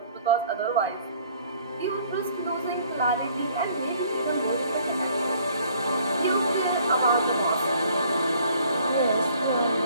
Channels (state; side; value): inverted; both; correlation -0.58